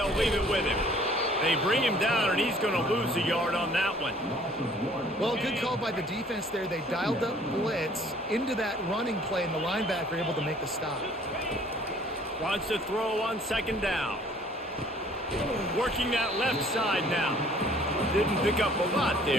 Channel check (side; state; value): both; normal; correlation 0.56